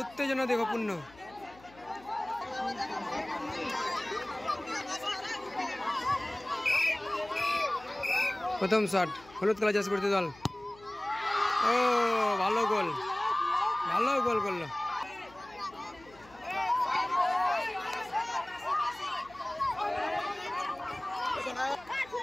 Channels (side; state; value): left; noise; hum, 24 dB below the sound